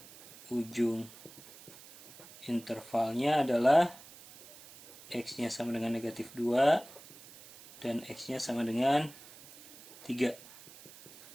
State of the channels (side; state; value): right; noise; hiss, 19 dB below the sound